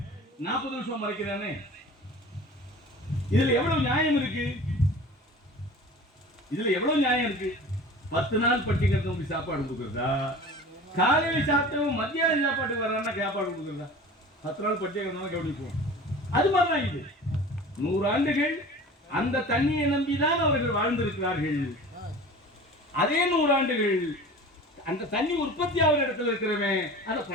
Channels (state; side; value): normal; both; correlation 0.40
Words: 40 வருஷம் மறைக்கிறானே. இதுல எவ்வளவு நியாயம் இருக்கு? 10 நாள் பட்டிக்கிறவங்க சாப்பாடு கொடுக்குறதா, காலையில சாப்பிட்டவங்க மத்தியான சாப்பாட்டுக்கு வர்றான்னா சாப்பாடு கொடுக்குறதா? 10 நாள் பட்டிக்கிறவங்க கவனிப்போம். அது மாதிரிதான் இது. 100 ஆண்டுகள் அந்த தண்ணியை நம்பிதான் அவர்கள் வாழ்ந்திருக்கிறார்கள். அதே 100 ஆண்டுகள் அந்த தண்ணி உற்பத்தி ஆகிற இடத்துல இருக்கிறவன் அதை